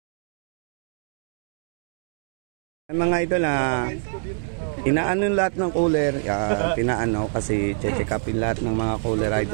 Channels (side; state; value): left; silent; digital silence